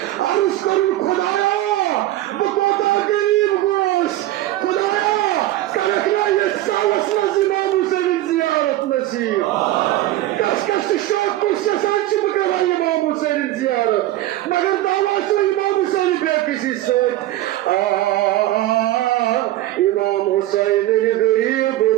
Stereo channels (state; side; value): quieter; left; 15.3 dB